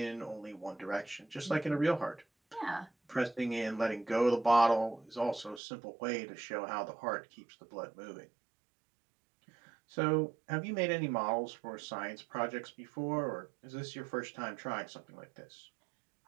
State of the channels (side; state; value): left; drops out; at 5.6 s